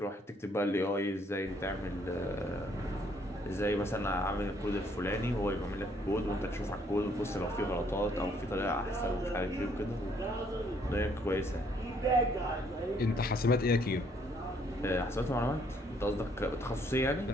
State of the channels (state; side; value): normal; both; correlation 0.66